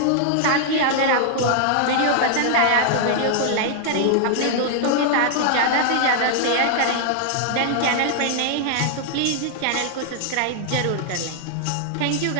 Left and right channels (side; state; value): both; different; correlation 0.00